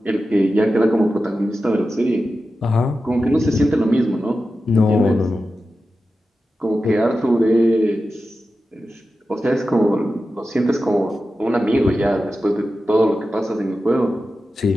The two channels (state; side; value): normal; both; correlation 0.92